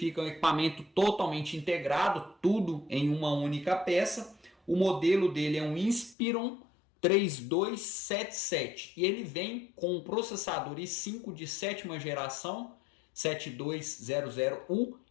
um equipamento totalmente integrado, tudo em uma única peça. O modelo dele é um Inspiron 3277 e ele vem com um processador i5 de sétima geração 7200U.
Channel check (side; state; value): right; drops out; at 6.2 s